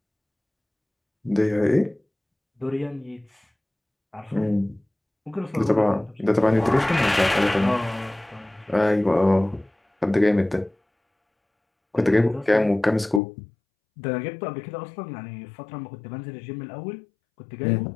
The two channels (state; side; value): drops out; right; at 13.2 s